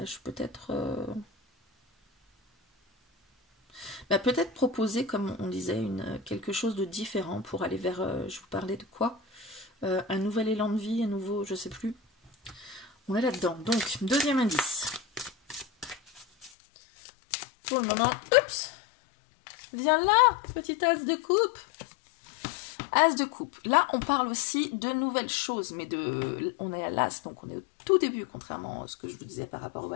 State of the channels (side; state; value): right; drops out; at 16.5 s